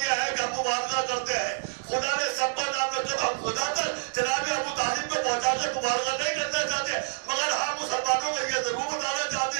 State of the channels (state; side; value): silent; left; digital silence